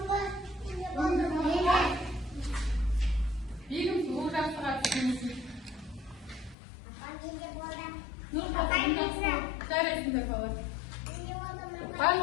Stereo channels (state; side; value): drops out; right; at 6.6 s